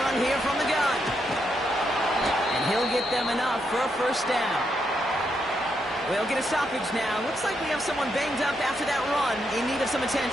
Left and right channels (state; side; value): normal; both; correlation 0.80